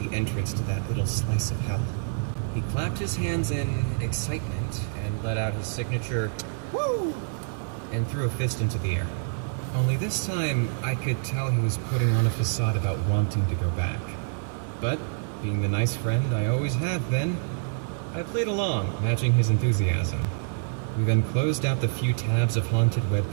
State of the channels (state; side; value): silent; left; digital silence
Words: entrance to that little slice of hell. He clapped his hands in excitement and let out his signature, "Woo!" and threw a fist into the air. Only this time, I could tell he was putting on a facade about wanting to go back. But, being the nice friend I always have been, I played along, matching his enthusiasm. We then closed out the few tabs of haunted web